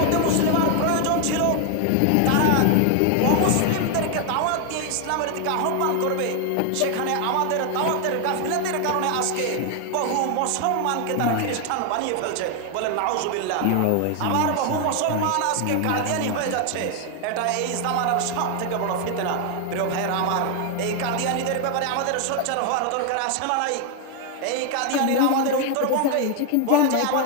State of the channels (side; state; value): both; different; correlation 0.00